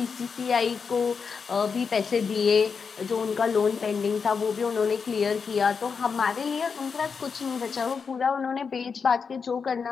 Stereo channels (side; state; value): right; quieter; 5.7 dB